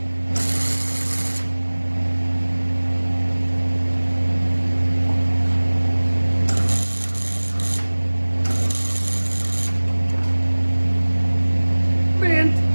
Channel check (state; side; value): inverted; both; correlation -1.00